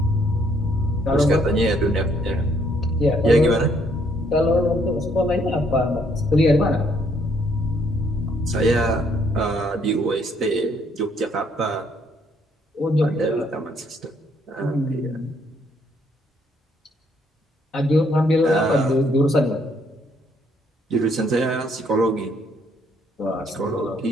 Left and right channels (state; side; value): normal; both; correlation 0.68